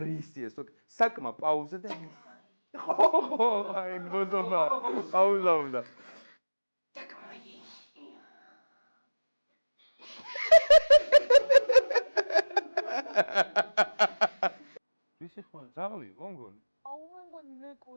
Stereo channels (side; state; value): both; inverted; correlation -1.00